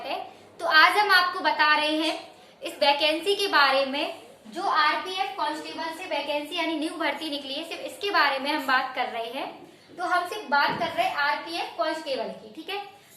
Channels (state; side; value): identical; both; correlation 1.00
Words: है। तो आज हम आपको बता रहे हैं इस वैकेंसी के बारे में जो आरपीएफ कांस्टेबल से वैकेंसी यानी न्यू भर्ती निकली है, सिर्फ इसके बारे में हम बात कर रहे हैं। तो हम सिर्फ बात कर रहे हैं आरपीएफ कांस्टेबल की, ठीक है।